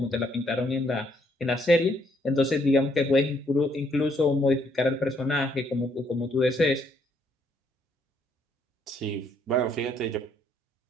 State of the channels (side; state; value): both; normal; correlation 0.70